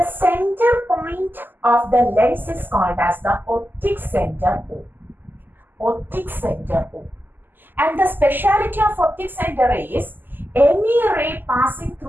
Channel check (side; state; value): left; late; 0.091 ms